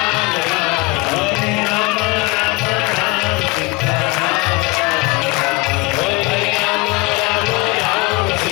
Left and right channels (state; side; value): quieter; right; 24.9 dB